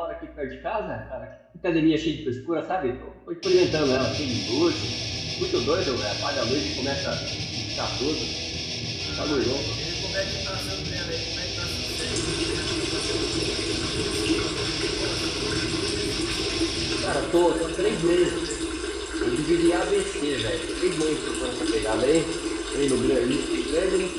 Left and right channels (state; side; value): identical; both; correlation 1.00